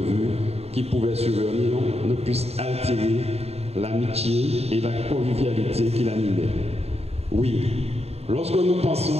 qui pouvaient survenir ne puissent altérer l'amitié et la convivialité qui l'animaient. Oui, lorsque nous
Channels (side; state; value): left; late; 0.30 ms